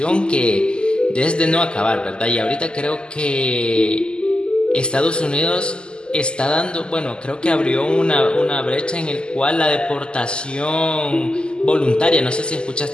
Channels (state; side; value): late; right; 0.048 ms